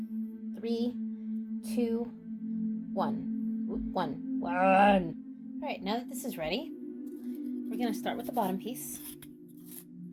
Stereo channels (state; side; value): identical; both; correlation 1.00